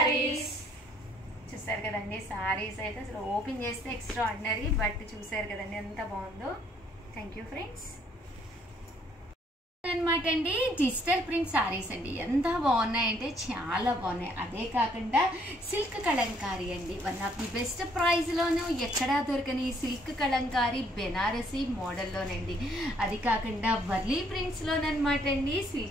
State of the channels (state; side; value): normal; both; correlation 0.65